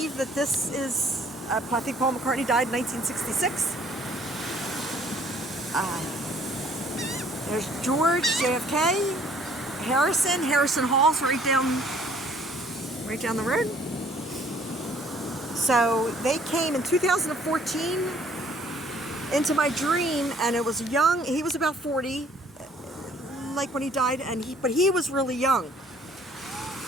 that this is, I think Paul McCartney died in 1966. There's George, JFK, Harrison Hall's right down the road. So they came in 2014 into my dream, and it was young. He was about 40, like when he died, but he was really young.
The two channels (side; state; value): both; normal; correlation 0.59